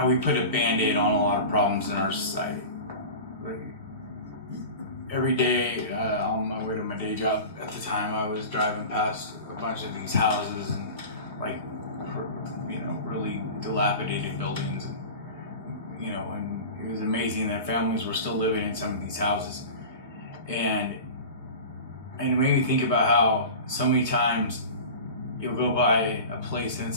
we put a band-aid on a lot of problems in our society. Like, every day on my way to my day job at the time, I was driving past a bunch of these houses and like, you know, really dilapidated buildings, and you know, and it was amazing that families were still living in some of these houses. And it made me think about how so many times you'll go by a place and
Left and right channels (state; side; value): inverted; both; correlation -0.33